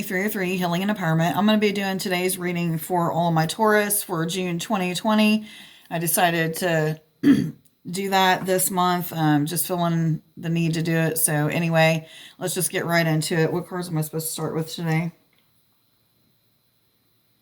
303 Healing and Empowerment. I'm going to be doing today's reading for all my Taurus for June 2020. I decided to do that this month, just feeling the need to do it. So anyway, let's just get right into it. What cards am I supposed to start with today?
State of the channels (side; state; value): both; identical; correlation 1.00